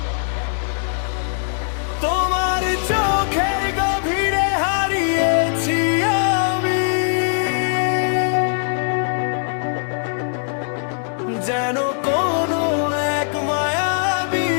তোমার চোখের গভীরে হারিয়েছি আমি যেন কোনো এক মায়াবী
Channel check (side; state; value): right; silent; digital silence